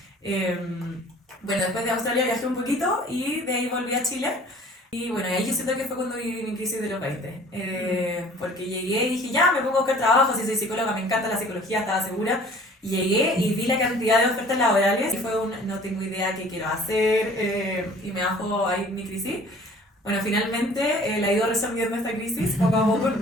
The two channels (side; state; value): both; normal; correlation 0.50